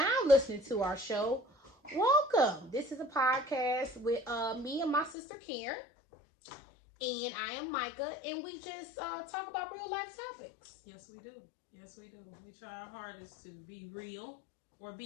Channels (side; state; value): right; drops out; at 5.2 s